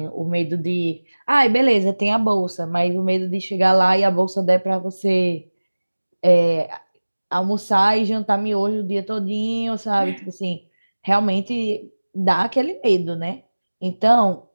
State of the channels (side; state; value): both; inverted; correlation -1.00